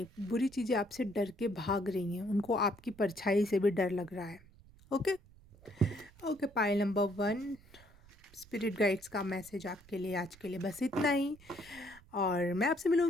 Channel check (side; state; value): right; noise; rumble, 24 dB below the sound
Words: बुरी चीज़ें आपसे डर के भाग रही हैं, उनको आपकी परछाई से भी डर लग रहा है। Okay okay, pile number 1, spirit guides का मैसेज आपके लिए आज के लिए बस इतना ही, और मैं आपसे